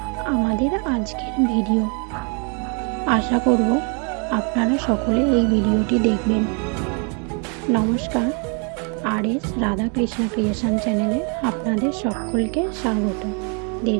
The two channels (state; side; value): quieter; left; 37.0 dB